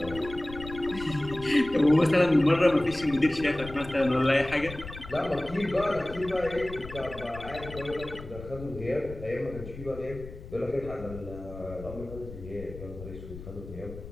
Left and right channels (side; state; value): left; noise; rumble, 13 dB below the sound